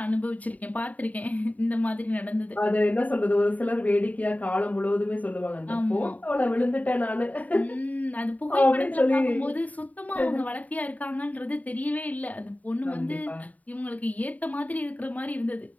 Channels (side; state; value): right; late; 0.073 ms